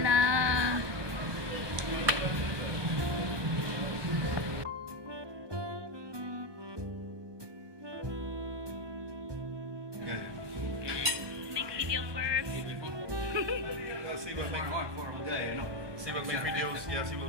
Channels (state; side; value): late; left; 1.2 ms